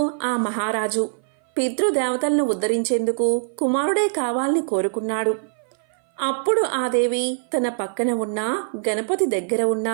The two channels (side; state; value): left; silent; 58 dB below the other